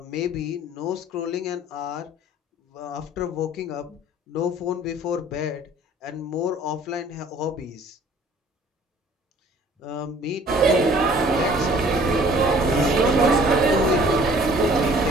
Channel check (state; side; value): normal; both; correlation 0.53